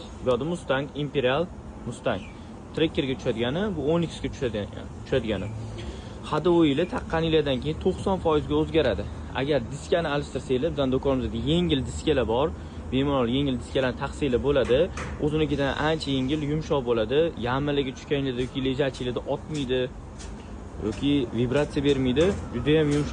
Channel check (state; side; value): identical; both; correlation 1.00